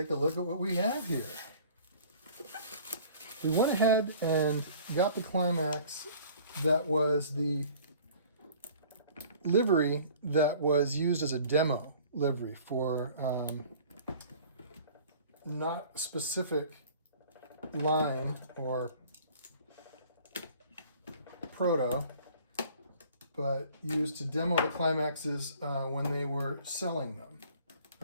a look at what we have here. We went ahead and got the Climax that was the livery that was used as a demo livery for not specific line or proto, but used to demo the Climaxes when they were selling them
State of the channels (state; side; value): inverted; both; correlation -0.50